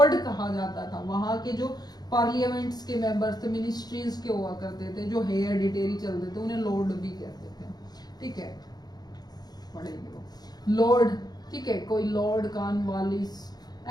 कहा जाता था, वहां के जो पार्लियामेंट्स के मेंबर्स थे, मिनिस्ट्रीज के हुआ करते थे, जो हेरिडिटरी चलते थे, उन्हें लॉर्ड भी कहते थे। ठीक है, पढ़ेंगे वो लॉर्ड। ठीक है, कोई लॉर्ड कॉर्नवालिस,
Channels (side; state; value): right; late; 0.19 ms